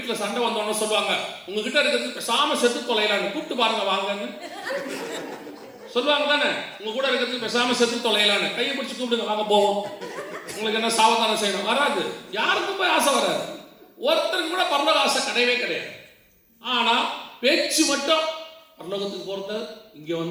சண்டை வந்தோன்னு சொல்லுவாங்க, உங்ககிட்ட இருக்கிறது பேசாம செத்து தொலைலான்னு, கூப்பிட்டு பாருங்க வாங்கன்னு சொல்லுவாங்க தானே. உங்க கூட இருக்கிறது பேசாம செத்து தொலைலான்னு கையை பிடிச்சி கூப்பிடுங்க, வாங்க போவோம். உங்களுக்கு என்ன சாவதானம் செய்யணும்? வராது. யாருக்கும் போய் ஆசை வராது. ஒருத்தருக்கு கூட பரலோக ஆசை கிடையவே கிடையாது. ஆனா பேச்சு மட்டும், பரலோகத்துக்கு போறது இங்க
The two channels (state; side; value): identical; both; correlation 1.00